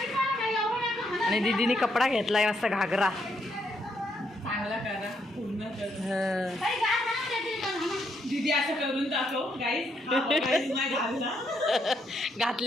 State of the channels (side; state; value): both; normal; correlation 0.76